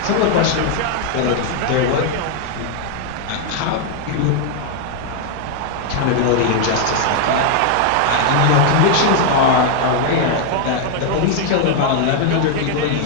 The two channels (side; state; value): both; different; correlation 0.00